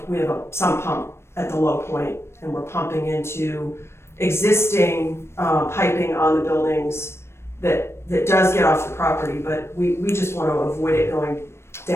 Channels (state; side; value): late; right; 0.12 ms